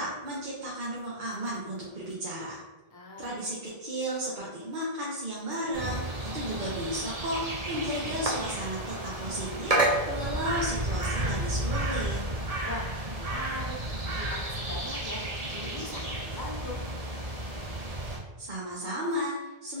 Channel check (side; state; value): left; late; 1.7 ms